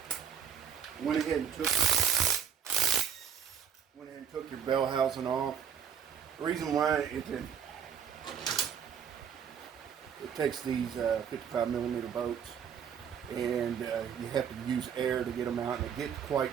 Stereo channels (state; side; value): quieter; left; 7.8 dB